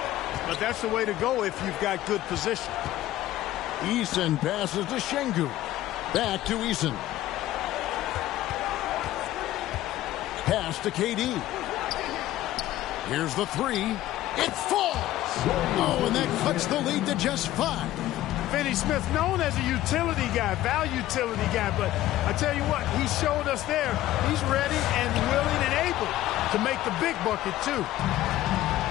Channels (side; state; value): right; quieter; 14.7 dB